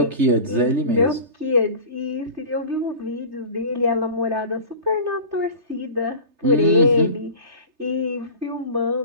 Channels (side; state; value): left; late; 3.3 ms